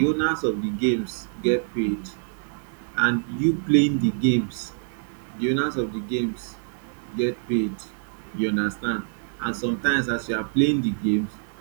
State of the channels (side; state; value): left; silent; digital silence